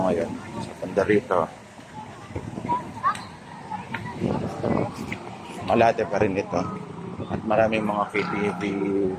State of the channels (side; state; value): both; identical; correlation 1.00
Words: ngayon sa Pandarito. Malate pa rin ito. At maraming mga KTV